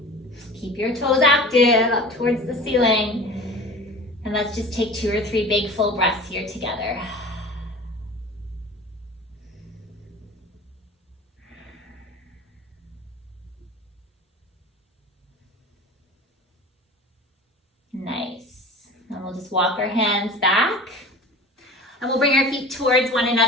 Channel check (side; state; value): both; normal; correlation 0.38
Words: Keep your toes active up towards the ceiling. And let's just take 2 or 3 big full breaths here together. Nice. And we'll just walk our hands back. And we'll bring our feet towards one